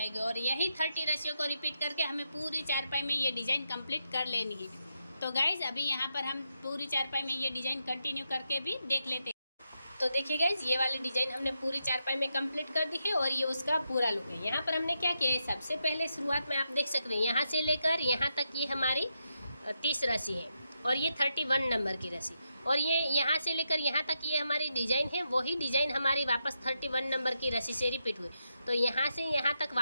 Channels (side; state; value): both; inverted; correlation -0.84